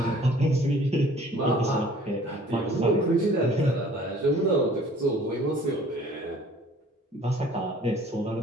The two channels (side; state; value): both; normal; correlation 0.52